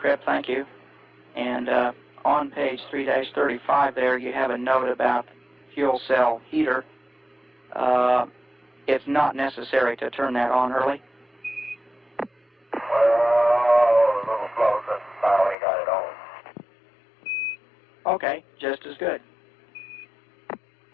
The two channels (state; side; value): drops out; right; at 15.6 s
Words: thank you. And on page 3-35 there, you have a note about fuel cell heater. It's not necessary to turn that on early. Well, a little slow since I only got it on. Okay, just as good.